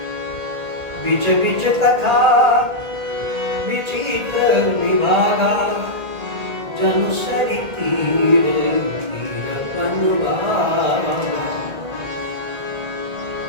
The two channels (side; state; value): left; late; 1.8 ms